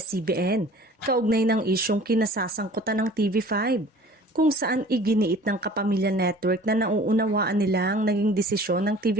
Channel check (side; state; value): both; normal; correlation 0.47